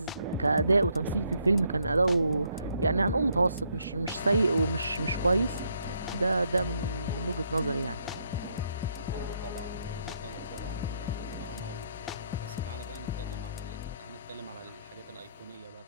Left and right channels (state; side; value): inverted; both; correlation -0.73